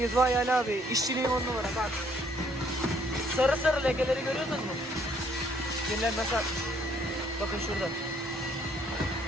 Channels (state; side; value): normal; both; correlation 0.65